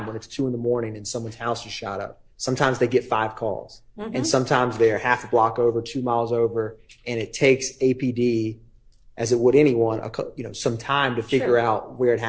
when it's 2 a.m. and someone's house is shot up, sometimes they get 5 calls. Mhm. And sometimes they're half a block over, 2 miles over, and it takes APD, as it would anyone, some time to figure out where it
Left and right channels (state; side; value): identical; both; correlation 1.00